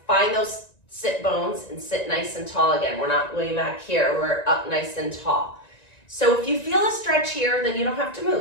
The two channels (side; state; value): right; late; 1.9 ms